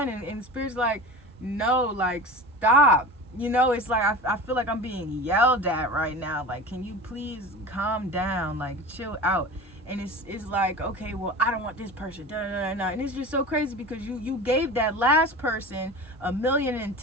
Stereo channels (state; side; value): normal; both; correlation 0.33